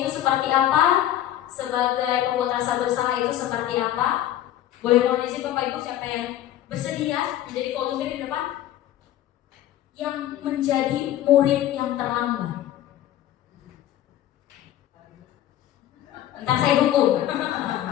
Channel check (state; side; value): quieter; right; 12.6 dB